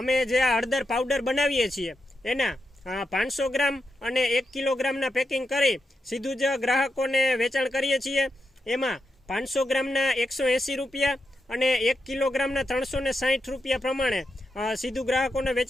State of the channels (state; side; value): normal; both; correlation 0.86